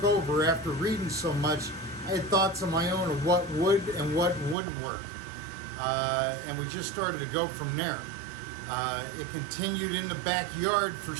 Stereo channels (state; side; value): drops out; left; at 4.5 s